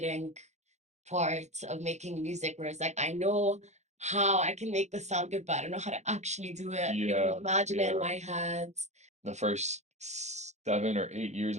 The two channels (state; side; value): late; left; 0.33 ms